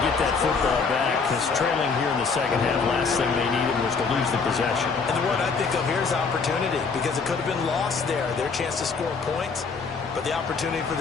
get that football back because trailing here in the second half, last thing they needed was to lose the possession. And the word I think of here is opportunity because it could have been lost there, their chance to score points. But the opportunity for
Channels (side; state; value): right; quieter; 5.0 dB